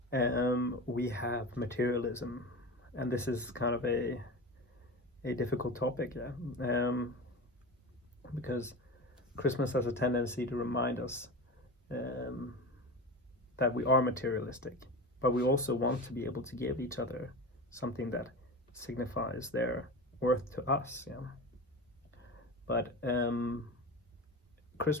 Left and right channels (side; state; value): both; normal; correlation 0.28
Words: we have materialism, and this is kind of a difficult topic, because Christmas has a tendency to remind us that we are materialistic, but we also want to be able to give each other something that signifies their worth to us. But